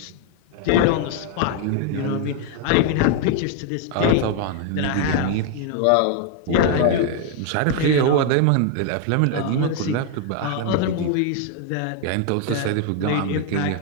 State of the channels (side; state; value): both; different; correlation 0.00